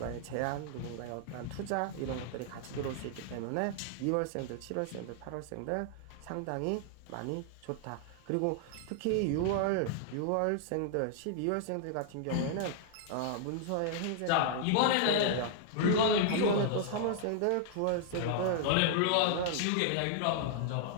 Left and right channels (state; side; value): different; both; correlation -0.01